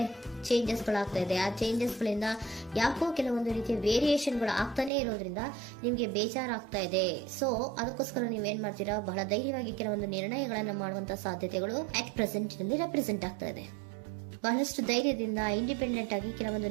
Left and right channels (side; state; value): left; drops out; at 4.9 s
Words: ಚೇಂಜಸ್ಗಳಾಗ್ತಾ ಇದೆ? ಆ ಚೇಂಜಸ್ಗಳಿಂದ ಯಾಕೋ ಕೆಲವೊಂದು ರೀತಿಯ ವೇರಿಯೇಷನ್ಗಳು ಆಗ್ತಾನೆ ಇರೋದ್ರಿಂದ ನಿಮಗೆ ಬೇಜಾರಾಗ್ತಾ ಇದೆ. ಸೊ ಅದಕ್ಕೋಸ್ಕರ ನೀವೇನ್ ಮಾಡ್ತೀರಾ? ಬಹಳ ಧೈರ್ಯವಾಗಿ ಕೆಲವೊಂದು ನಿರ್ಣಯಗಳನ್ನ ಮಾಡುವಂತಹ ಸಾಧ್ಯತೆಗಳು ಅಟ್ ಪ್ರೆಸೆಂಟ್ ನಲ್ಲಿ ರೆಪ್ರೆಸೆಂಟ್ ಆಗ್ತಾ ಇದೆ. ಬಹಳಷ್ಟು ಧೈರ್ಯದಿಂದ ಇಂಡಿಪೆಂಡೆಂಟ್ ಆಗಿ ಕೆಲವೊಂದು